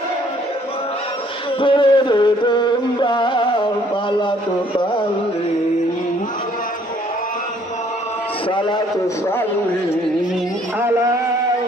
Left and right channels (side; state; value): both; normal; correlation 0.62